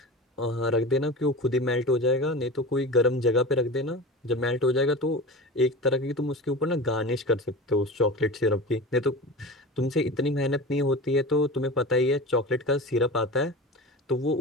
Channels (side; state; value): both; normal; correlation 0.31